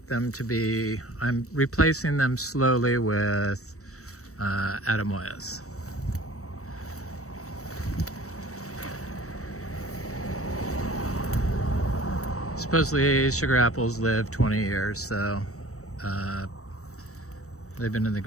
them to be, I'm replacing them slowly with Adamoyas. Supposedly sugar apples live 20 years, so they've been in the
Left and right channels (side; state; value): right; late; 0.65 ms